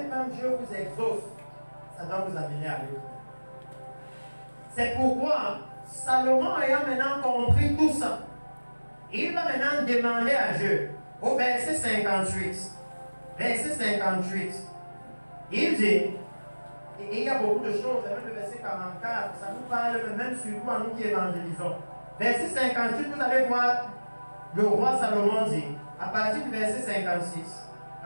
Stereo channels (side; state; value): both; inverted; correlation -1.00